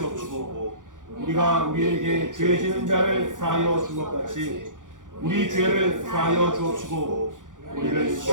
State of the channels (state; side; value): late; left; 0.88 ms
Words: 우리가 우리에게 죄 지은 자를 사하여 준 것 같이 우리 죄를 사하여 주옵시고 우리를